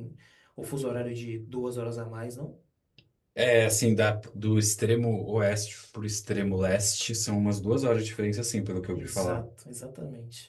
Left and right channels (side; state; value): both; identical; correlation 1.00